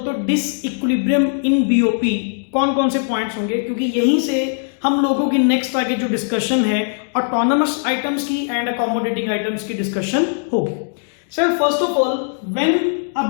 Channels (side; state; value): right; silent; digital silence